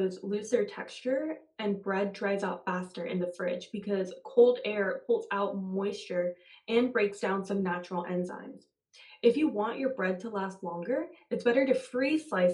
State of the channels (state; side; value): identical; both; correlation 1.00